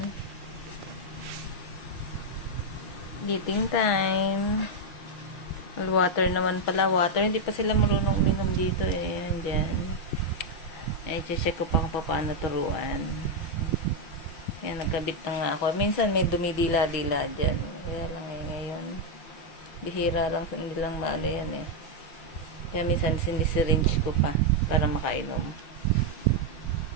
eating time. Water naman pala. Water. Hindi pa sila marunong uminom dito eh. Yan dyan. Ay, check ko pa kung paano turuan. Yan, nagkabit na nga ako. Minsan may dumidila-dila dyan. Kaya lang ngayon. Bihira lang, hindi lang maalo yan eh. Kaya minsan sinisiringe ko pa para makainom.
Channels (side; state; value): right; late; 6.1 ms